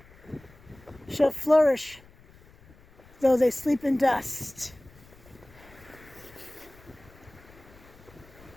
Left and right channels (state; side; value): noise; left; rumble, 24 dB below the sound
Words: shall flourish, though they sleep in dust.